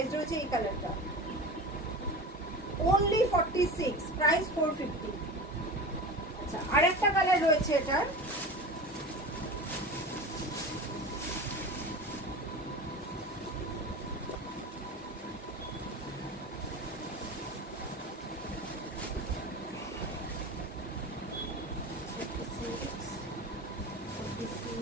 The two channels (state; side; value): normal; both; correlation 0.31